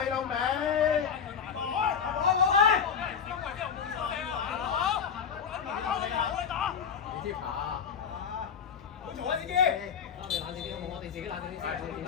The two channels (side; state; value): right; quieter; 7.0 dB